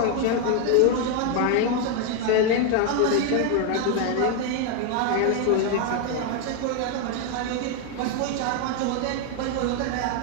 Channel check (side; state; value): both; different; correlation 0.01